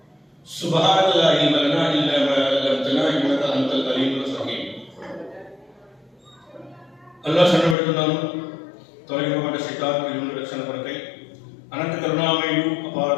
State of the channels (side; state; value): right; drops out; at 7.8 s